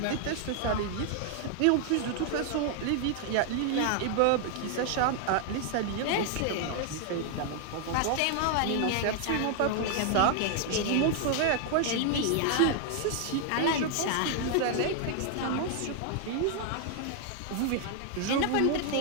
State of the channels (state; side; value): different; both; correlation 0.00